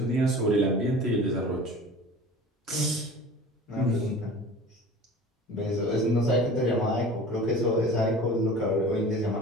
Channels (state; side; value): normal; both; correlation 0.40